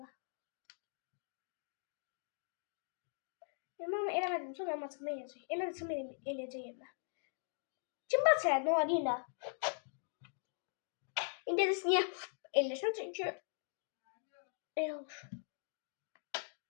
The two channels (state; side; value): silent; right; digital silence